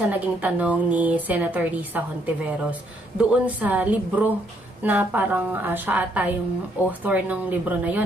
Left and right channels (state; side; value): normal; both; correlation 0.71